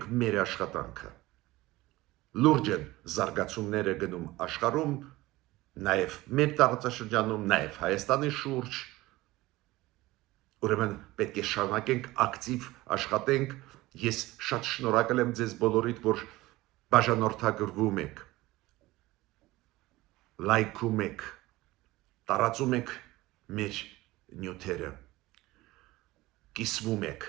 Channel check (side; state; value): left; quieter; 18.9 dB